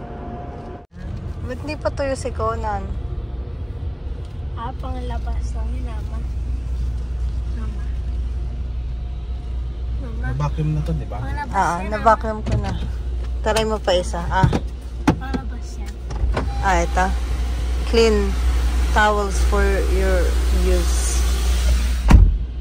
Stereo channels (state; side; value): identical; both; correlation 1.00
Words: Ba't di pa tuyo si Conan? Pangalabas lang yun, Mama. Mama. Vacuum na to, di ba? Pangalabas yan, Na-vacuum ko na. Taray mo pa isa. Pangalabas yan. Ito. Clean towels for your use.